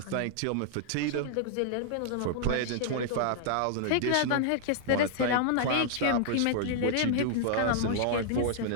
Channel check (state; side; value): different; both; correlation -0.01